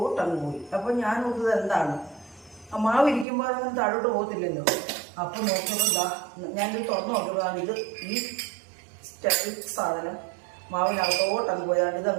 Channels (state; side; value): drops out; left; at 3.2 s